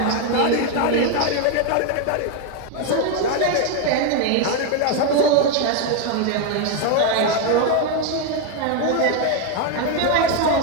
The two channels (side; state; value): both; different; correlation 0.01